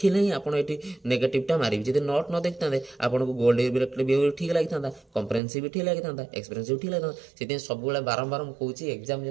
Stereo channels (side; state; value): left; drops out; at 5.4 s